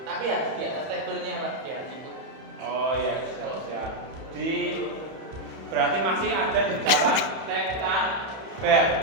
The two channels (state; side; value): late; left; 31 ms